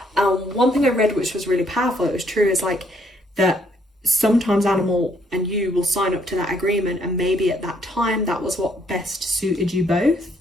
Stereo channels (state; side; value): normal; both; correlation 0.68